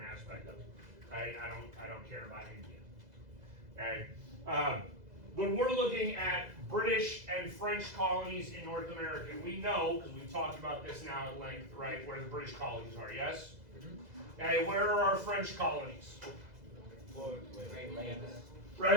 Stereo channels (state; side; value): late; left; 2.0 ms